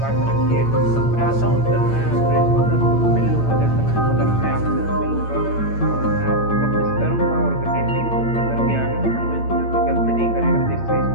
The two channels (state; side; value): late; right; 8.9 ms